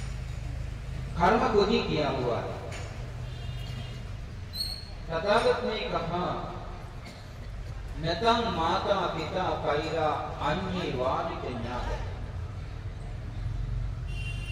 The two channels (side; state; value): both; identical; correlation 1.00